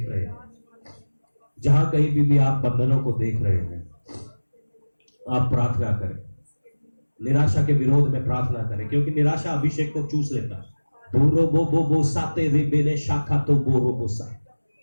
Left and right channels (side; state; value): both; inverted; correlation -1.00